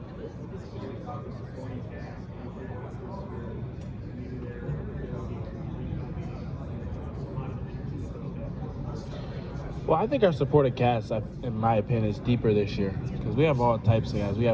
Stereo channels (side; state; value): both; identical; correlation 1.00